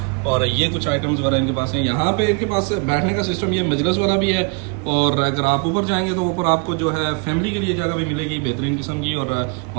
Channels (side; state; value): left; quieter; 35.6 dB